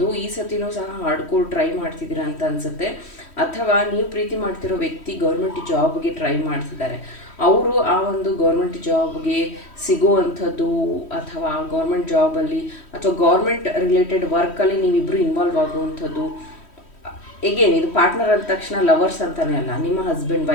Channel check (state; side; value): late; right; 3.1 ms